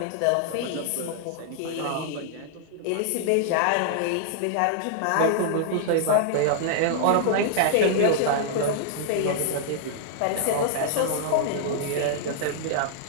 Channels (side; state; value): both; different; correlation -0.01